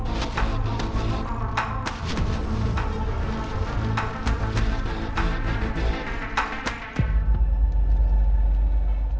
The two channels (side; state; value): both; identical; correlation 1.00